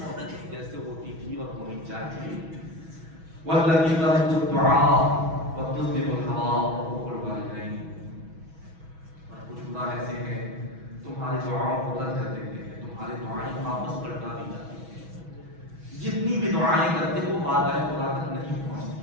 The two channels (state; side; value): late; left; 6.2 ms